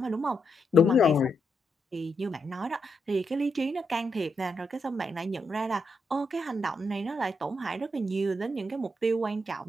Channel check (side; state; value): both; normal; correlation 0.81